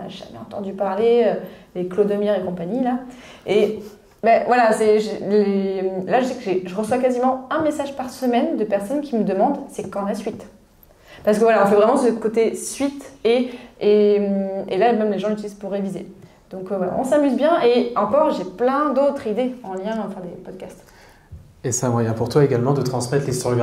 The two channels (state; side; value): identical; both; correlation 1.00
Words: jamais entendu parler, les Clodomir et compagnie, là. Et voilà, là, je sais que je reçois quasiment un message par semaine de personnes qui me demandent, c'est quand la suite ? Parce que voilà, on fait vraiment ce côté suite et là, même les gens l'utilisent pour réviser. Donc voilà, on s'amuse bien et encore, j'ai plein d'autres idées en lien à faire des podcasts. Et c'est un moyen pour toi également de transmettre